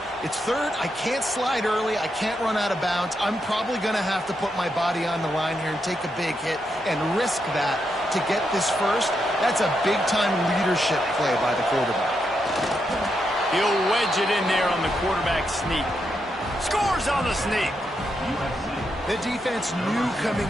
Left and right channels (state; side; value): normal; both; correlation 0.82